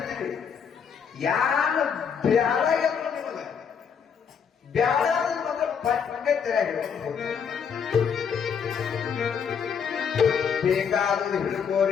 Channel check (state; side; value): quieter; right; 6.9 dB